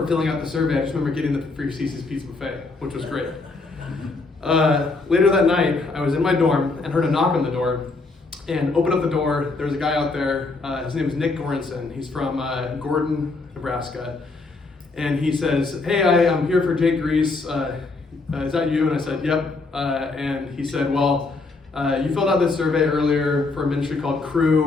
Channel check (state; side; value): quieter; right; 3.7 dB